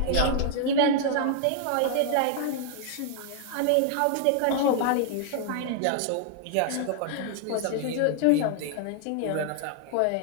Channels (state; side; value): different; both; correlation 0.00